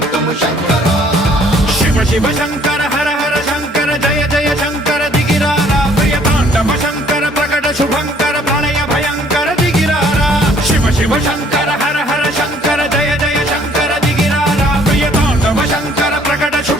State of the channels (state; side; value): normal; both; correlation 0.60